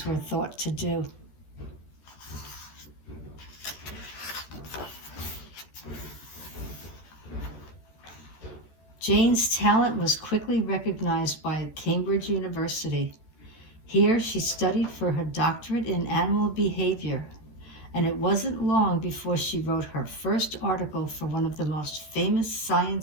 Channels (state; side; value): late; right; 14 ms